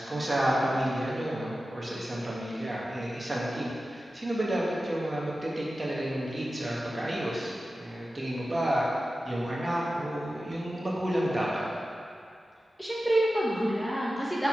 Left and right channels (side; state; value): both; normal; correlation 0.94